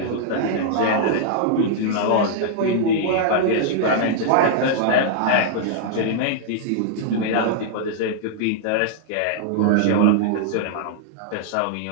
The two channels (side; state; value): both; different; correlation -0.01